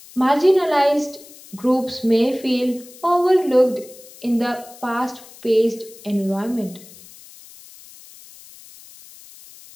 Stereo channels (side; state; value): left; noise; hiss, 21 dB below the sound